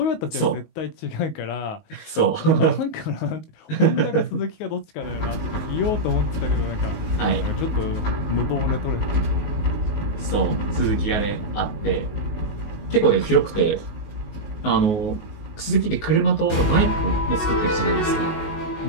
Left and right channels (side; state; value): right; late; 19 ms